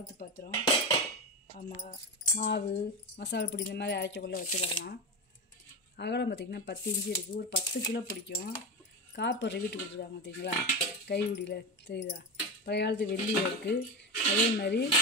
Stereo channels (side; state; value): both; normal; correlation 0.19